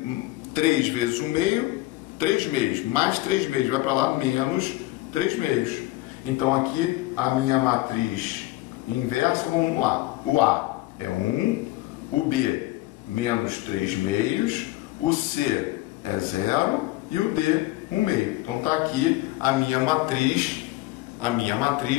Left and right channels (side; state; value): right; quieter; 18.8 dB